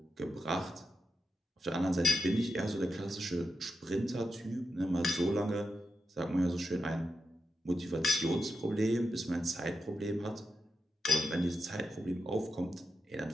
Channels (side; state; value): both; normal; correlation 0.87